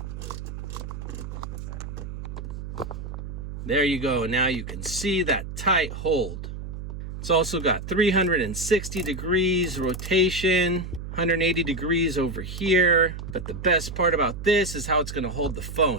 There you go. Now you can see that tight hold. It's also got 360 degrees rotation, 180 degrees over here. But the best part about this is how it's going to hold the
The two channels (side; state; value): right; noise; hum, 8 dB below the sound